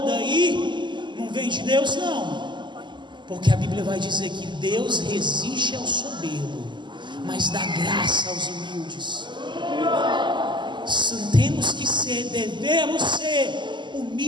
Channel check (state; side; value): late; left; 0.22 ms